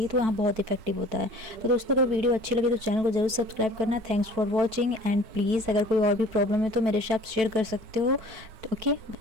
तो यहाँ बहुत इफेक्टिव होता है। तो दोस्तों, अगर वीडियो अच्छी लगे तो चैनल को जरूर सब्सक्राइब करना। Thanks for watching and please अगर कोई और भी प्रॉब्लम है तो मेरे से आप शेयर कर सकते हो। ओके।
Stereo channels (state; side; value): late; left; 4.5 ms